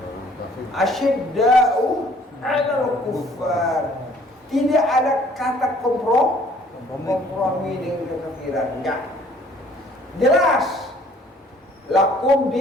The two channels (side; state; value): both; normal; correlation 0.57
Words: Asyidda'u alal kuffar. Tidak ada kata kompromi dengan kekafiran. Enggak. Jelas. Lakum